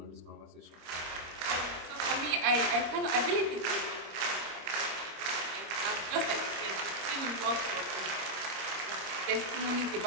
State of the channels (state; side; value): late; left; 25 ms